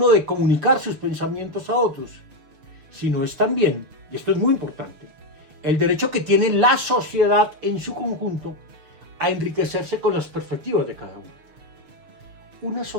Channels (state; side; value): late; left; 6.6 ms